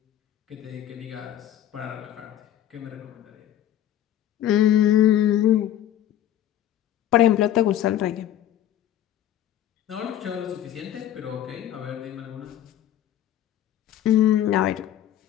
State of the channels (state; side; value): quieter; right; 11.7 dB